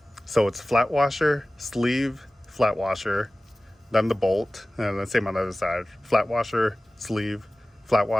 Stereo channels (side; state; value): both; normal; correlation 0.97